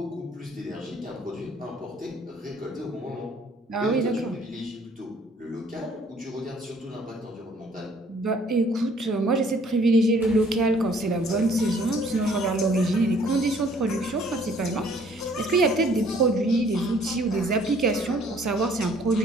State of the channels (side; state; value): both; normal; correlation 0.59